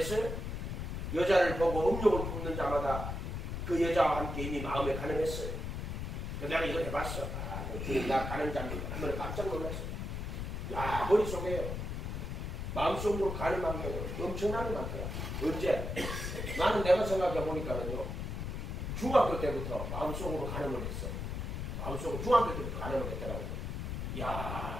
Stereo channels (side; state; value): left; noise; rumble, 4 dB below the sound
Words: 여자를 보고 음욕을 품는 자마다 그 여자와 함께 이미 마음에 가늠했어요. 그래서 내가 이걸 해봤어. 나 가늠자입니다. 한번 깜짝 놀랐어요. 야 머릿속에요. 마음속으로 가늠한 게 엄청나게 많더라. 언제? 나는 내가 생각해 보니까는요. 중학교 때부터 마음속으로 가늠을 했어. 마음속으로 중학교 때부터 가늠을 했더라고요.